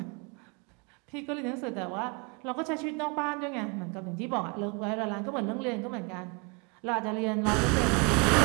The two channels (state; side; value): quieter; left; 31.6 dB